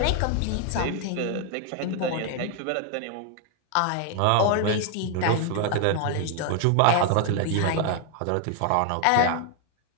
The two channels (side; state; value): both; different; correlation 0.00